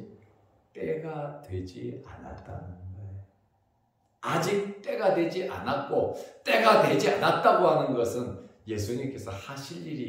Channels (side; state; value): both; identical; correlation 1.00